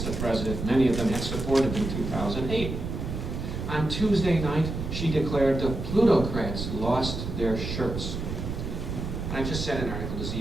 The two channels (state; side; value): noise; right; rumble, 5 dB below the sound